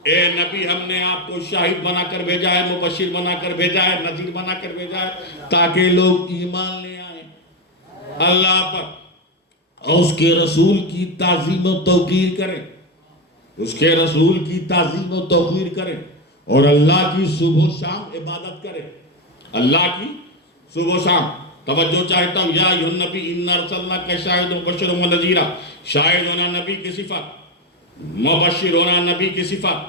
اے نبی ہم نے آپ کو شاہد بنا کر بھیجا ہے، مبشر بنا کر بھیجا ہے، نذیر بنا کر بھیجا ہے، تاکہ لوگ ایمان لے آئیں اللہ پر اور اس کے رسول کی تعظیم و توقیر کریں، اس کے رسول کی تعظیم و توقیر کریں، اور اللہ کی صبح و شام عبادت کریں، اللہ کی صبح و شام۔ توجہ چاہتا ہوں، یا ایھا النبی انا ارسلناک شاہدا وبشرا ونذیرا، شاہد ہونا نبی کی صفت، مبشر ہونا نبی کی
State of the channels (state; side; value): normal; both; correlation 0.12